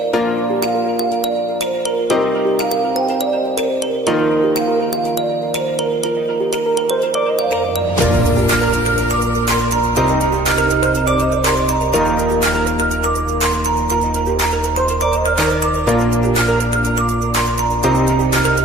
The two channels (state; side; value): normal; both; correlation 0.57